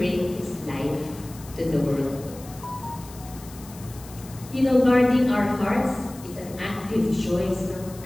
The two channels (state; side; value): noise; left; hiss, 19 dB below the sound